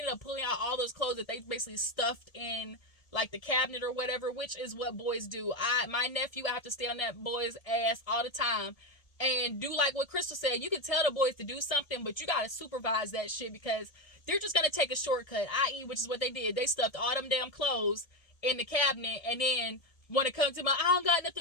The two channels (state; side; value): late; right; 1.7 ms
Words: up pulling out all those clothes that they basically stuffed in like the cabinet or whatever, which is what boys do. My nephew, I have to stay on that boy's ass all the time and do like what Crystal said. You can tell the boys to do something, but you got to supervise that shit because they're just going to take a shortcut, i.e., which is what they did. They stuffed all them damn clothes in the cabinet, and then when it comes to I don't got